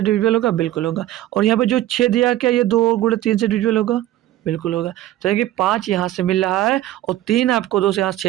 डिविजिबल होगा, बिल्कुल होगा। और यहाँ पे जो 6 दिया क्या ये 2 गुणे 3 से डिविजिबल होगा, बिल्कुल होगा। तो कि 5 यहाँ से मिल रहा है और 3 आपको 2 से यहाँ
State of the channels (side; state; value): left; quieter; 14.1 dB